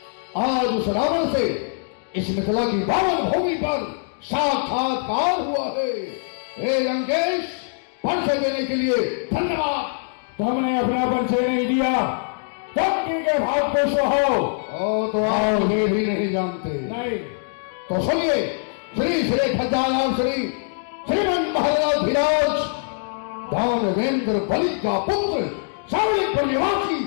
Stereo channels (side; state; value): right; silent; digital silence